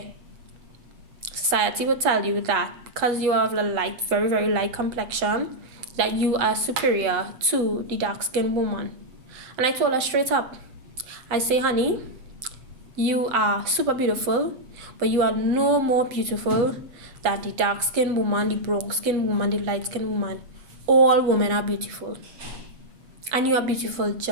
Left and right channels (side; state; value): left; late; 7.6 ms